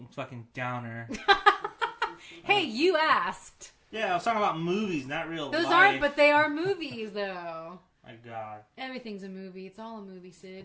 fucking downer. Hey, you asked. Yeah, I was talking about movies, not real life. Those aren't, but they are movies, though. My God. Everything's a movie. It's all a movie,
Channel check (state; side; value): identical; both; correlation 1.00